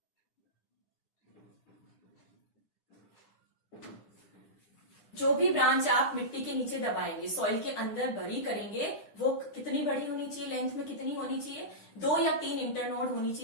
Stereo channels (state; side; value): late; right; 10 ms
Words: जो भी ब्रांच आप मिट्टी के नीचे दबाएंगे, सॉइल के अंदर भरी करेंगे, वो कितनी बड़ी होनी चाहिए, लेंथ में कितनी होनी चाहिए? 2 या 3 इंटरनोड होनी